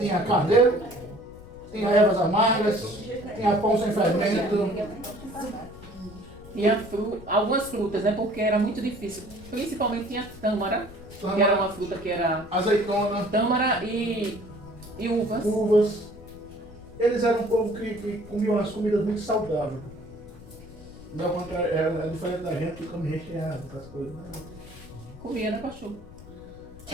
carneiro, tinha ervas amargas, tinha pão sem fermento. Tinha algumas frutas, né? Porque era muito difícil. Principalmente tinha tâmara, que era uma fruta que era Azeitona, tâmara e uvas. uvas. Eles eram um povo que comia umas comidas muito saudáveis. Não, ao contrário, é diferente da gente que come recheado, essas coisas. Né? Comia, né, pastor?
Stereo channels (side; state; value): left; noise; rumble, 18 dB below the sound